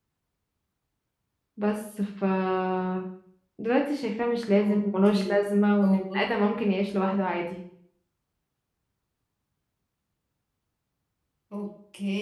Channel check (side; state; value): both; identical; correlation 1.00